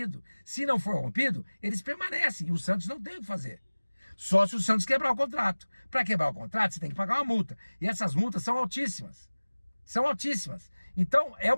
Se não for rompido, eles permanecem. E o Santos não tem o que fazer. Só se o Santos quebrar o contrato. Para quebrar o contrato, você tem que pagar uma multa. E essas multas são altíssimas. São altíssimas. Então, é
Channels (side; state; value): both; inverted; correlation -1.00